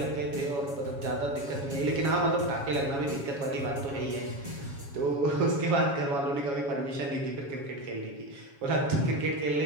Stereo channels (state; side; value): late; left; 7.2 ms